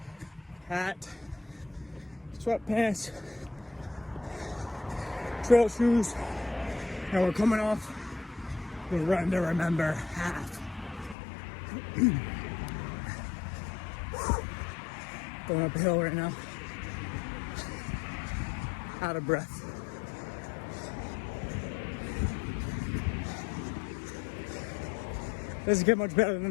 hat, sweatpants, trail shoes, and we're coming off the Run to Remember half. Going up a hill right now. Out of breath. Doesn't get much better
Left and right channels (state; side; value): drops out; right; at 11.2 s